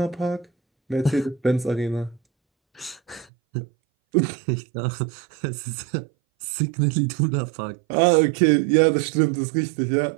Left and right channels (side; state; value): left; drops out; at 3.2 s